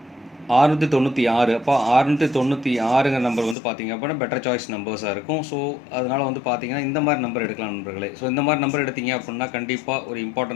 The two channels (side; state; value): right; drops out; at 3.6 s